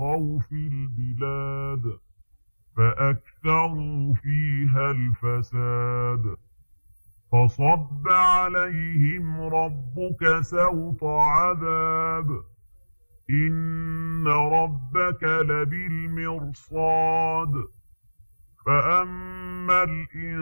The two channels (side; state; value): both; inverted; correlation -1.00